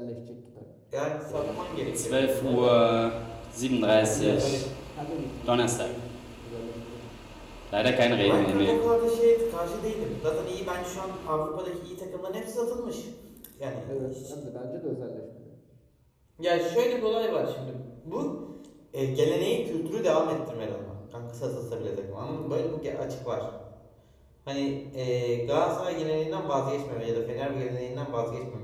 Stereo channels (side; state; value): both; identical; correlation 1.00